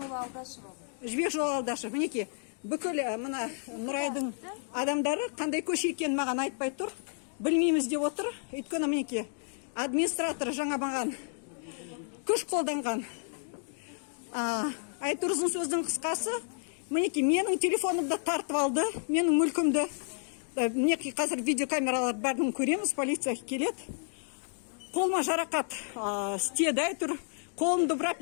Алдашева. Жібек жолы Алдашева. Мінеки бүкіл мына Нұрайдың адамдары қандай көше екенін маған айтпай тұр. Білмейміз деп отыр. Өйткені мінеки администратор жаңа маған күш қолданған. Айтыр ұзын сөздің қысқасы, мінеки менің телефонымды тартып алды, менің мүлкімді. Мінеки қазір видеокамералар бәрін көреміз, полиция келеді. Қолыма жарақат істеді, айтыр. Қолымды бұрап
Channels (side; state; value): right; silent; 57 dB below the other